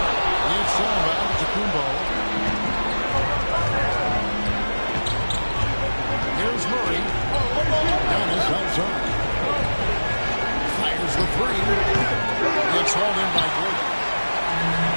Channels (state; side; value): inverted; both; correlation -1.00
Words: It's Antetokounmpo. Here's Murray. Giannis outside. Fires the 3. It's hauled in by Gordon.